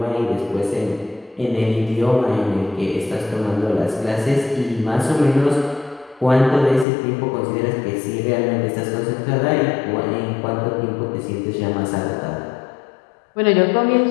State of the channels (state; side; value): drops out; right; at 6.9 s